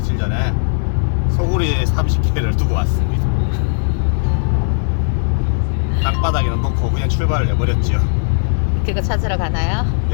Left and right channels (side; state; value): right; silent; 58 dB below the other